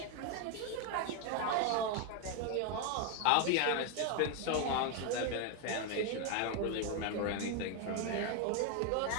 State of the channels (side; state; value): both; different; correlation 0.01